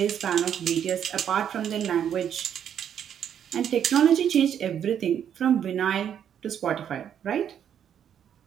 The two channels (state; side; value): quieter; left; 9.1 dB